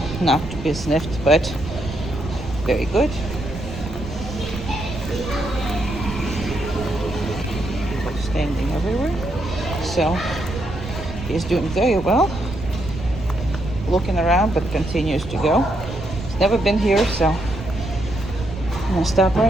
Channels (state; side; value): noise; right; rumble, 9 dB below the sound